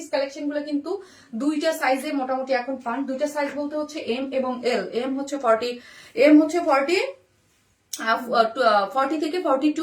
কালেকশন গুলো কিন্তু দুইটা সাইজে মোটামুটি এখন পান, দুইটা সাইজ বলতে হচ্ছে এম এবং এল। এম হচ্ছে 40 থেকে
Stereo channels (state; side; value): identical; both; correlation 1.00